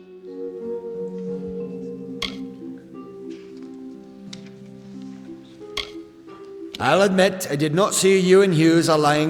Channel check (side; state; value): both; identical; correlation 1.00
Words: I'll admit I did not see you and Hughes